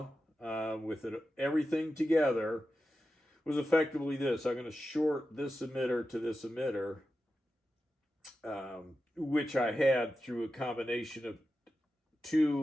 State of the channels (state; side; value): normal; both; correlation 0.91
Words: with everything together was effectively this. I'm going to short this emitter to this emitter, which I had through a combination of